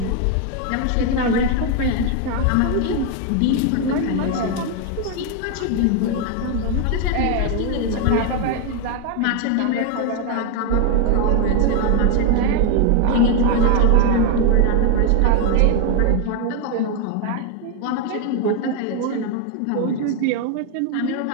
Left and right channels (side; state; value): both; different; correlation 0.01